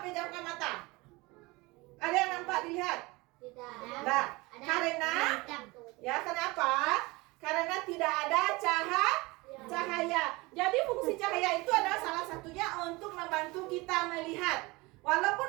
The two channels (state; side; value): quieter; left; 23.5 dB